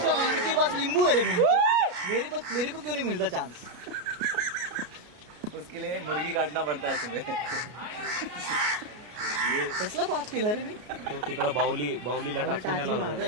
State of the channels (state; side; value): late; left; 33 ms